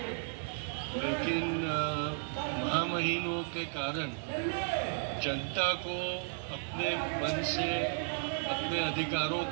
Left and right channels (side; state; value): left; silent; digital silence